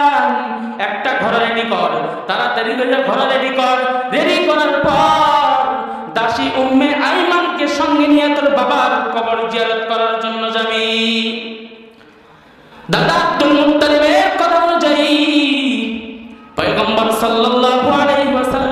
একটা ঘর রেডি কর, তাড়াতাড়ি করে ঘর রেডি কর। রেডি করার পর দাসী উম্মে আইমানকে সঙ্গে নিয়ে তোর বাবার কবর জিয়ারত করার জন্য যাবি। দাদা আব্দুল মুত্তালিবের কথা অনুযায়ী পয়গম্বর সাল্লাল্লাহু আলাইহি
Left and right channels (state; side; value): identical; both; correlation 1.00